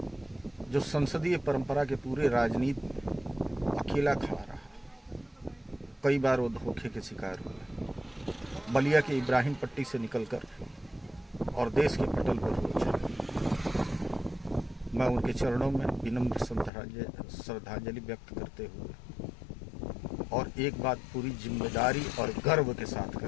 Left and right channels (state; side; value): drops out; right; at 16.7 s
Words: जो संसदीय परंपरा के पूरे राजनीति में अकेला खड़ा रहा। कई बार वो धोखे के शिकार हुए, बलिया के इब्राहिम पट्टी से निकलकर और देश के पटल पर हो चले। मैं उनके चरणों में विनम्र श्रद्धांजलि व्यक्त करते हुए और एक बात पूरी जिम्मेदारी और गर्व के साथ